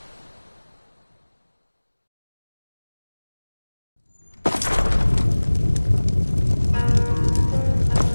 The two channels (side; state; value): both; inverted; correlation -1.00